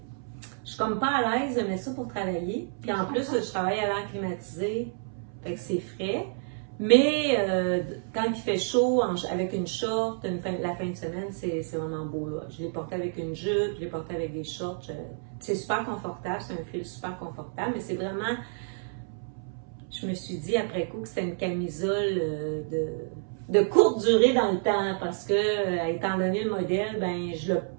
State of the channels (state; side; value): silent; left; 58 dB below the other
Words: je suis comme pas à l'aise de mettre ça pour travailler. Puis en plus, je travaille à l'air climatisé, fait que c'est frais. Mais quand il fait chaud, avec une short, la fin de semaine, c'est vraiment beau. Là. Je l'ai porté avec une jupe, je l'ai porté avec des shorts. C'est super confortable, c'est un fil super confortable, mais c'est vraiment... Je me suis dit après coup que c'était une camisole de courte durée dans le temps parce que, étant donné le modèle, ben je le